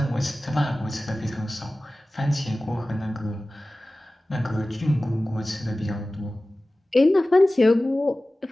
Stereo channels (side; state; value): both; normal; correlation 0.97